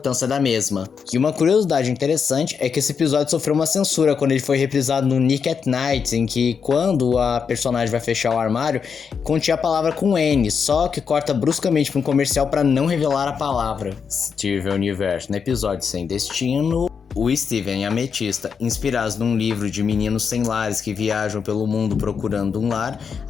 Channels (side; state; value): right; quieter; 6.3 dB